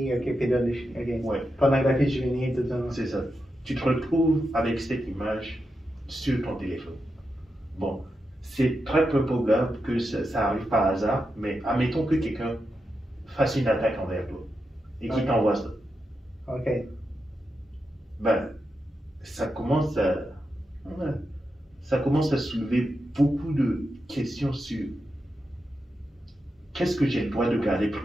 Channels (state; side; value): normal; both; correlation 0.87